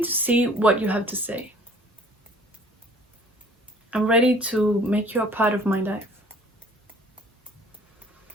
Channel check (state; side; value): normal; both; correlation 0.53